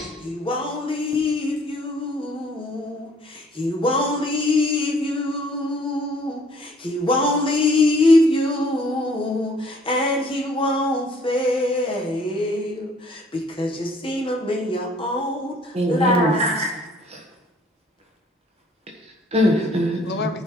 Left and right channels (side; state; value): both; normal; correlation 0.59